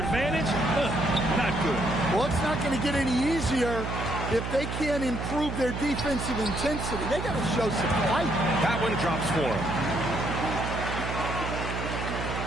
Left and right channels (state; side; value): noise; right; hum, 4 dB below the sound